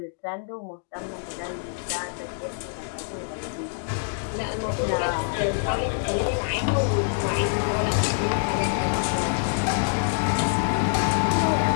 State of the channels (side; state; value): right; silent; digital silence